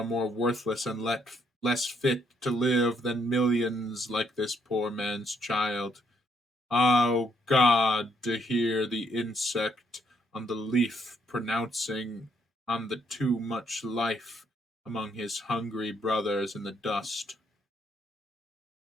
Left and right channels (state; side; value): normal; both; correlation 0.72